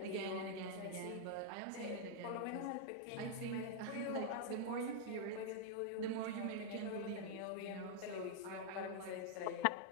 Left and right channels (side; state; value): both; different; correlation -0.01